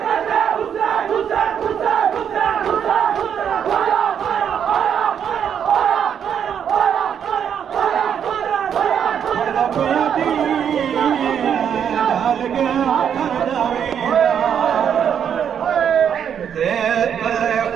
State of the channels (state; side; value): quieter; left; 8.3 dB